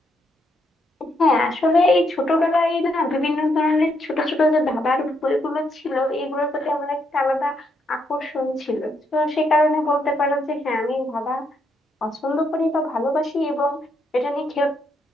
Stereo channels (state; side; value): normal; both; correlation 0.76